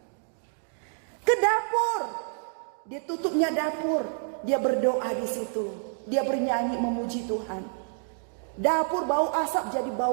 Ke dapur. Dia tutupnya dapur. Dia berdoa di situ. Dia bernyanyi memuji Tuhan. Dapur bau asap jadi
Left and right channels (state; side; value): silent; left; digital silence